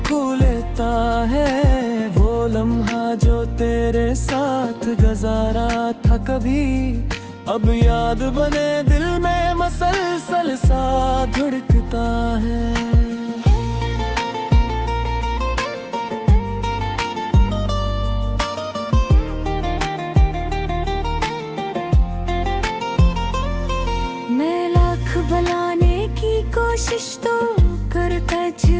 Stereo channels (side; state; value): both; identical; correlation 1.00